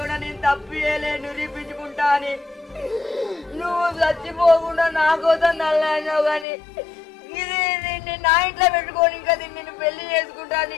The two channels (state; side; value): drops out; right; at 6.5 s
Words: నేను తప్పు చేయలే, నిరూపించుకుంటా అని. నువ్వు చచ్చిపోకుండా నా కోసం నల్లావు కానీ ఇది దీన్ని నా ఇంట్లో పెట్టుకొని ఇంకా దీన్ని నేను పెళ్లి చేసుకుంటా,